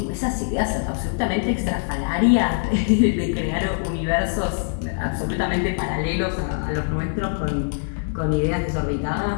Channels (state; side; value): silent; right; 63 dB below the other